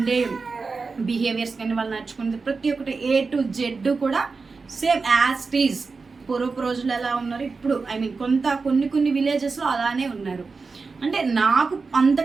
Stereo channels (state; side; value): quieter; left; 4.4 dB